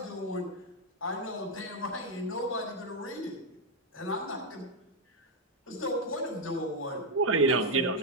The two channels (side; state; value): both; normal; correlation 0.01